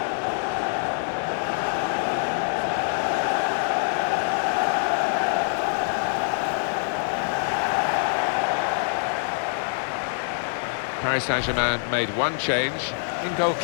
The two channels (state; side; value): silent; right; digital silence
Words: Paris Saint-Germain made one change. In goal,